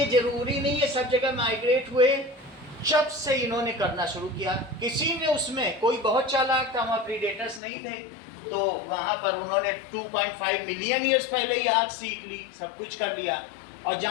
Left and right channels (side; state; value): right; drops out; at 7.6 s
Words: जरूरी नहीं है सब जगह माइग्रेट हुए। जब से इन्होंने करना शुरू किया, किसी ने उसमें कोई बहुत चालाक था, वहाँ प्रीडेटर्स नहीं थे, तो वहाँ पर उन्होंने 2.5 मिलियन ईयर्स पहले ही आग सीख ली, सब कुछ कर लिया। और